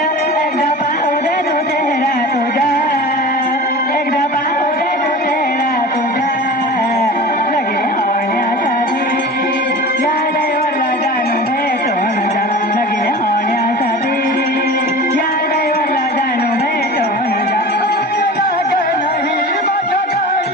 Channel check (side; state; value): both; normal; correlation 0.36